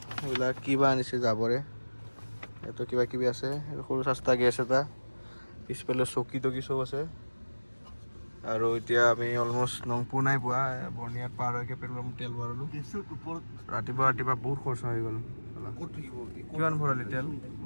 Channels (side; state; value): both; inverted; correlation -1.00